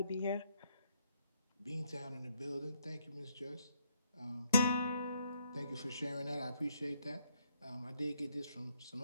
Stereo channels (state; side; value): inverted; both; correlation -0.72